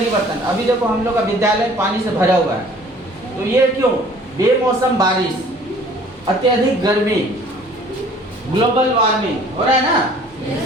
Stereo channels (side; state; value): both; normal; correlation 0.52